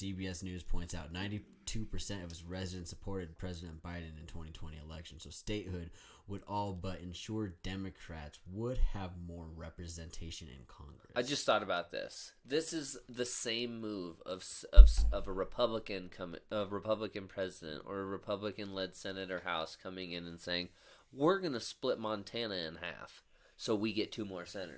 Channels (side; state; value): both; identical; correlation 1.00